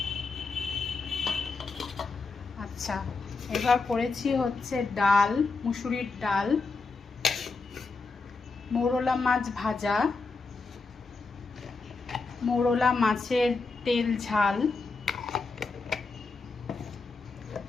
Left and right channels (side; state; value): right; quieter; 4.1 dB